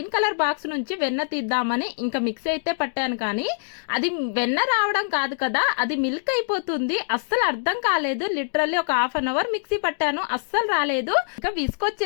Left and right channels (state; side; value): silent; right; digital silence